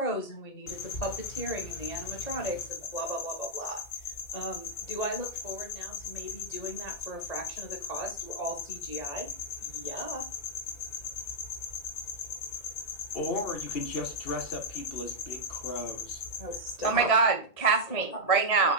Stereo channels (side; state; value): right; late; 1.7 ms